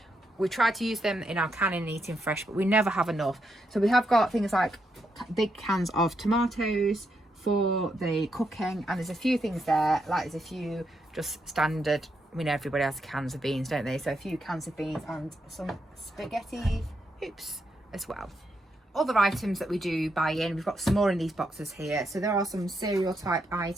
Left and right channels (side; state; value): both; normal; correlation 0.80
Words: We try to use them in our canning and eating fresh, but we never have enough. So we have got things like big cans of tomatoes for the cooking, and there's a few things there, like there's a few just standard, I know everybody has cans of beans, don't they? So a few cans of beans and some spaghetti hoops as well. Other items that we do buy in, we've got some more in these boxes here. So there are some cereal type